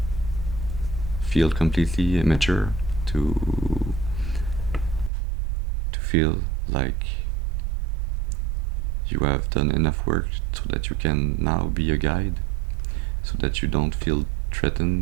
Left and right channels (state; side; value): drops out; left; at 5.1 s